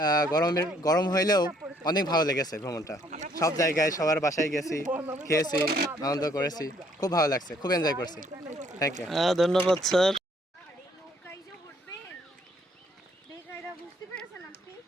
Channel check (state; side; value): normal; both; correlation 0.65